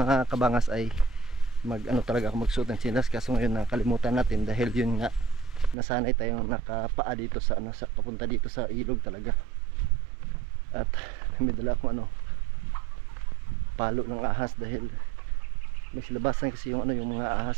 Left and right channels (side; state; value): left; drops out; at 5.8 s